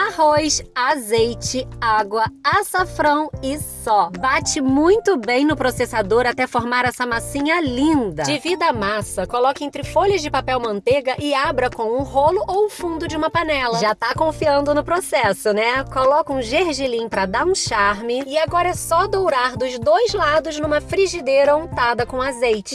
azeite, água, açafrão e só. Bate muito bem no processador até formar essa massinha linda. Divida a massa, coloque entre folhas de papel manteiga e abra com um rolo ou o fundo de uma panela. Já tá confiando no processo, né? Coloca um gergelim pra dar um charme e agora é só dourar dos dois lados numa frigideira untada com azeite.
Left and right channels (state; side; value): identical; both; correlation 1.00